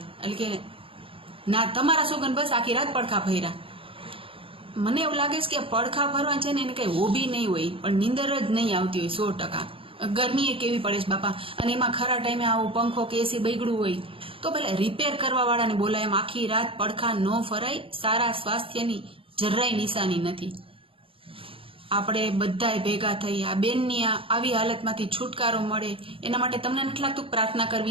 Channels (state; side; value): late; left; 0.26 ms